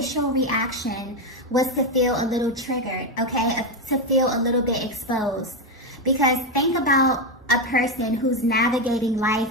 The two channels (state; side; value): normal; both; correlation 0.09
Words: reaction was to feel a little triggered, okay? To feel a little bit exposed. Because think about a person who's navigating